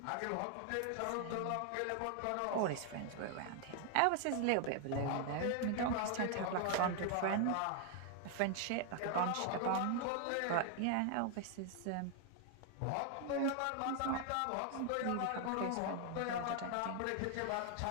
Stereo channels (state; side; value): different; both; correlation 0.00